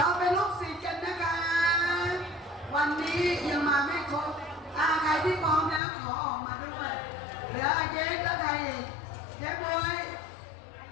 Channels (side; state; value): right; drops out; at 5.8 s